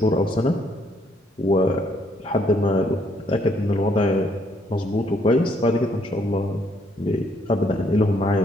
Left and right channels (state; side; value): normal; both; correlation 0.69